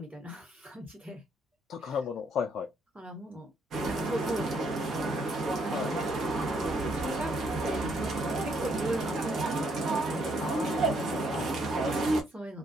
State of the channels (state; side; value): normal; both; correlation 0.71